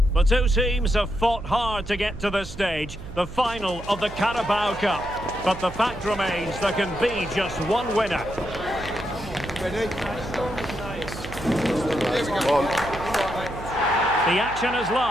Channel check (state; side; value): noise; right; hum, 13 dB below the sound